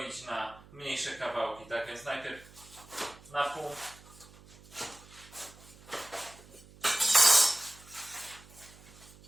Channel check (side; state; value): right; noise; hum, 22 dB below the sound